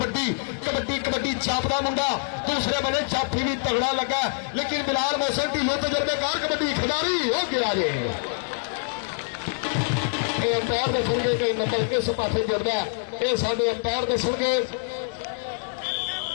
कबड्डी कबड्डी जापदा मुंडा। दूसरे बने जाफी भी तगड़ा लगा, लेकिन बिलाल मोहसिन ढिल्लों तजर्बेकार कबड्डी खिलाड़ी हो गया जे। अंपायर दसणगे कि नंबर किस पासे जुड़ता है, ये साडे अंपायर दसणगे।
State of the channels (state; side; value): silent; right; 61 dB below the other